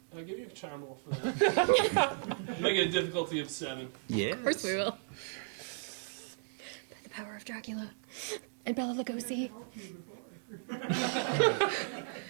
I'll give you a charm roll for that. Make it a difficulty of 7. Yeah. Of course we will. the power of Dracula and Bela Lugosi.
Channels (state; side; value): silent; left; digital silence